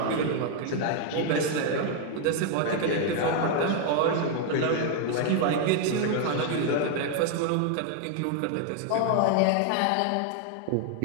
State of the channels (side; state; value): both; different; correlation 0.00